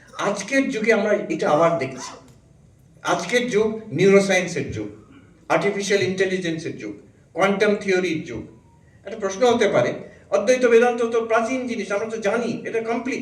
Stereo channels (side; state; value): both; identical; correlation 1.00